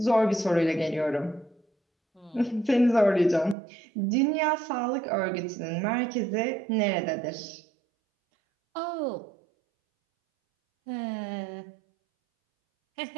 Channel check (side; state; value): left; drops out; at 3.6 s